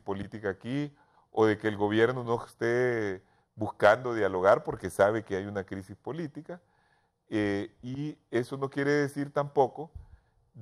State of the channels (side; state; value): both; identical; correlation 1.00